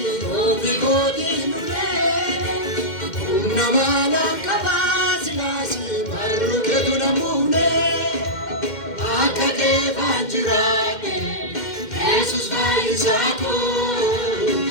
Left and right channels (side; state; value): right; late; 2.1 ms